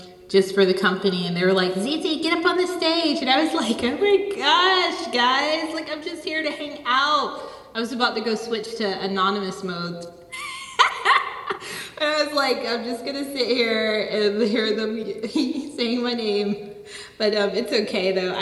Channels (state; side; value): identical; both; correlation 1.00